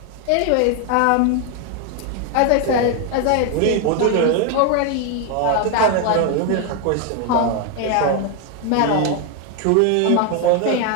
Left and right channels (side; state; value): both; different; correlation 0.01